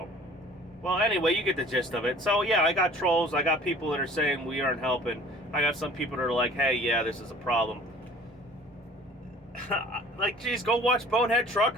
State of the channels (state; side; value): normal; both; correlation 0.48